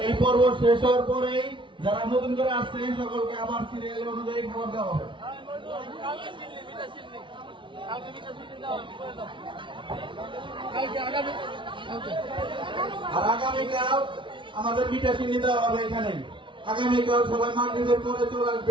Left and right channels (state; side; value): late; left; 0.24 ms